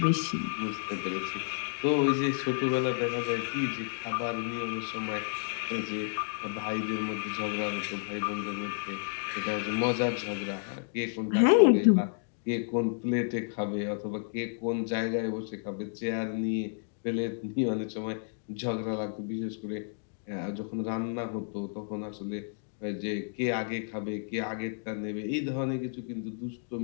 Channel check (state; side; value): silent; right; digital silence